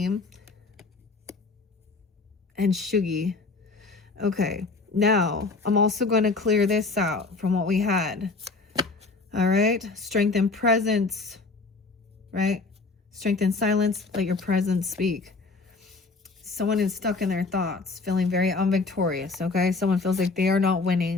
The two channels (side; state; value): right; quieter; 3.9 dB